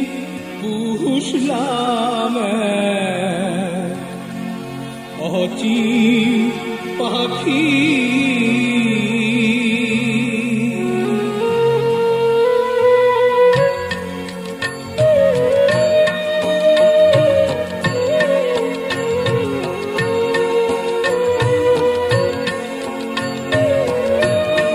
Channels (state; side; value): identical; both; correlation 1.00